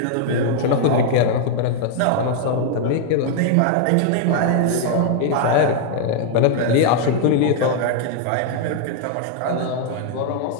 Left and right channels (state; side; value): different; both; correlation 0.00